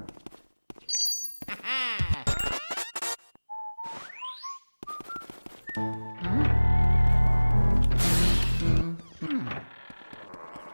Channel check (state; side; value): inverted; both; correlation -1.00